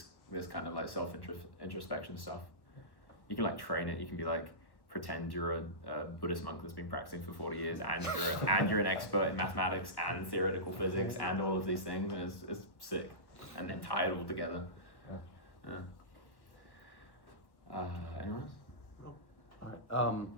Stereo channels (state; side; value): late; right; 1.0 ms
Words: kind of like self-introspection stuff. You can like train it, you can be like, pretend you're a Buddhist monk that's been practicing for 40 years and you're an expert in mathematics and theoretical physics and all of these things, and it's sick. And then tie it all together. Yeah. Anyone else? No. Alright,